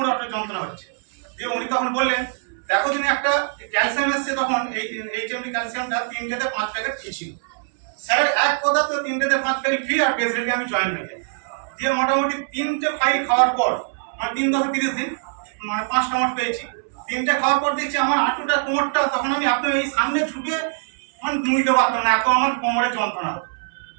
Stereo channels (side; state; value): left; silent; 64 dB below the other